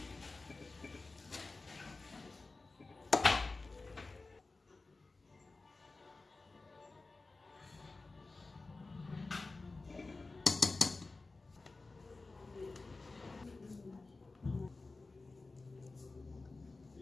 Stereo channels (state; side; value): quieter; right; 3.5 dB